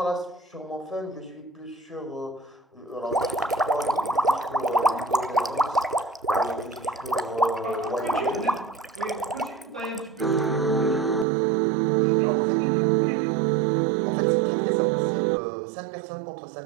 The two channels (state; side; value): drops out; left; at 11.2 s